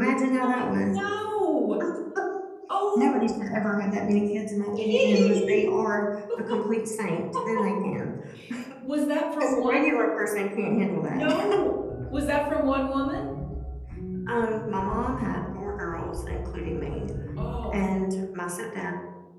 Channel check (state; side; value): identical; both; correlation 1.00